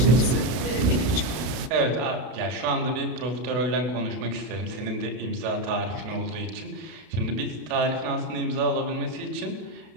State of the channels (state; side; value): late; left; 32 ms